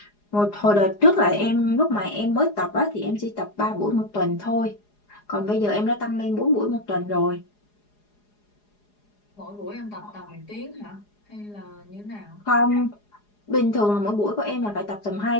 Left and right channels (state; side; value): late; right; 4.8 ms